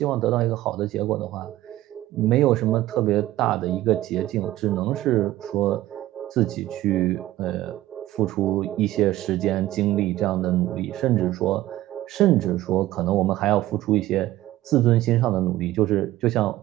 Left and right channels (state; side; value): quieter; left; 15.5 dB